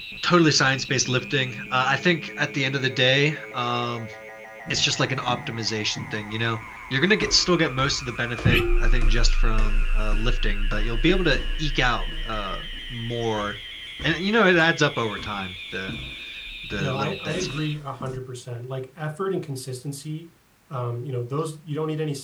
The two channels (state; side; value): identical; both; correlation 1.00